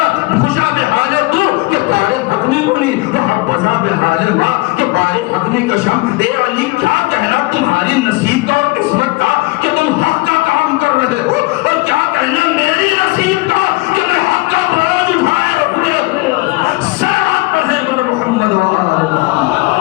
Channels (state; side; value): quieter; right; 23.1 dB